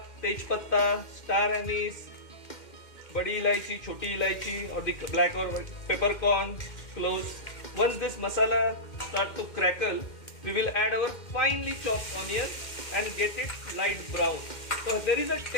tej patta, star anise, badi ilaichi, choti ilaichi or the black or peppercorn, cloves. Once this masala start to crackle, we will add our finely chopped onion and get it light brown. So there is a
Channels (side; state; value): right; late; 2.1 ms